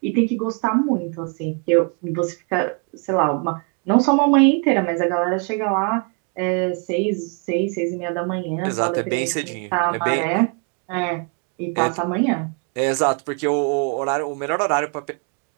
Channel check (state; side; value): quieter; left; 37.3 dB